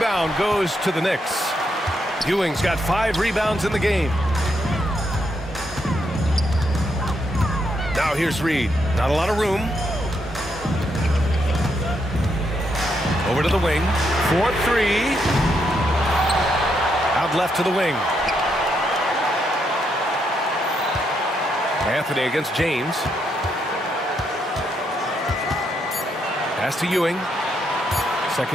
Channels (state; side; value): normal; both; correlation 0.78